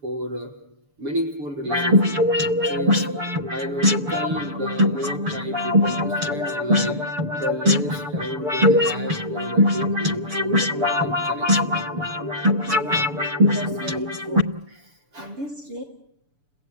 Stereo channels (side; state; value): left; late; 6.9 ms